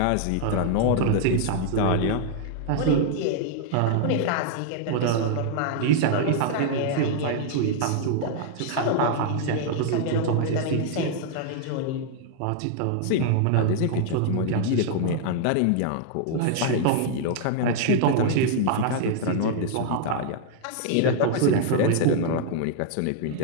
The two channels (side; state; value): both; different; correlation -0.01